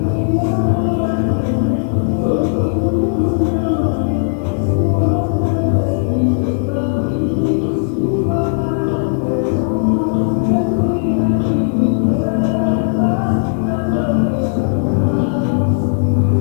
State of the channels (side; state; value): right; silent; 69 dB below the other